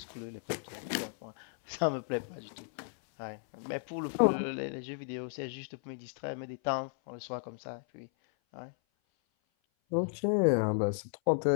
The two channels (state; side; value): silent; right; 55 dB below the other